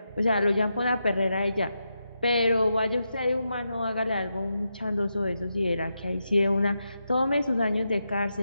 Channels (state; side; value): inverted; both; correlation -0.86